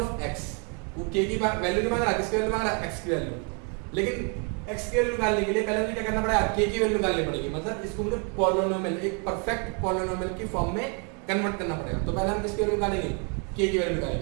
x, वो k की वैल्यू नहीं मांग रहा, किसकी वैल्यू मांग रहा है x की वैल्यू, लेकिन x की वैल्यू निकालने के लिए पहले मुझे क्या करना पड़ेगा, k की वैल्यू निकालनी पड़ेगी, मतलब इसको मुझे पॉलिनोमियल एक परफेक्ट पॉलिनोमियल की फॉर्म में कन्वर्ट करना पड़ेगा। तो पहले हम किसकी वैल्यू निकालेंगे, k की वैल्यू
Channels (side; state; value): left; quieter; 37.0 dB